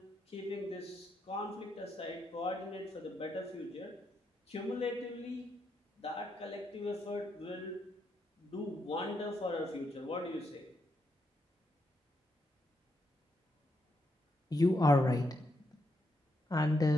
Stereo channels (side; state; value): both; normal; correlation 0.80